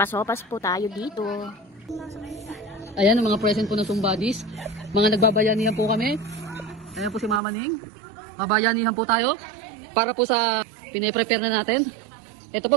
po tayo dito. Ayan ang mga present po ng Sumbadis. Mga nagbabayanihan po kami. Ayan po si Mama Ning. Babayanihan po tayo para po sa pine-prepare na natin. Ito po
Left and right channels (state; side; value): drops out; left; at 7.4 s